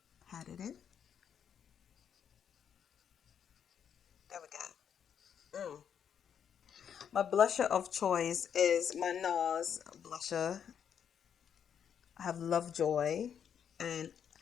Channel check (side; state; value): right; quieter; 8.2 dB